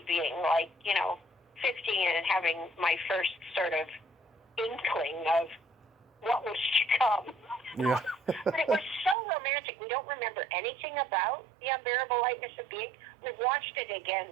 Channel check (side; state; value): left; drops out; at 9.2 s